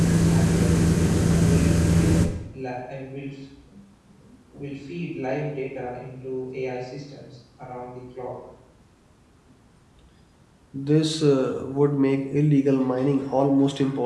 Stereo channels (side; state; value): both; identical; correlation 1.00